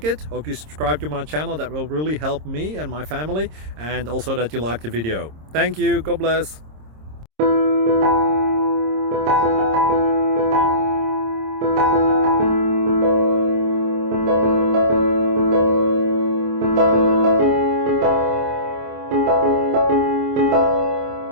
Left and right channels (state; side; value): late; left; 26 ms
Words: it, hope you subscribe to my channel. That will really help me and my family, and also that you like the video. Thank you, God bless.